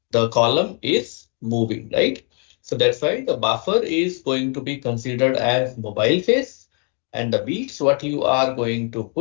the column is moving, right? So that's why the buffer is going to be considered as mobile phase, and the beads what you are going to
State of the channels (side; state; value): right; quieter; 39.3 dB